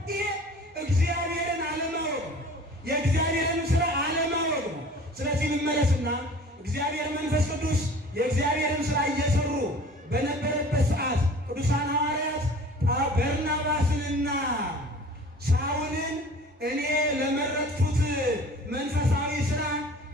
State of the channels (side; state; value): both; normal; correlation 0.45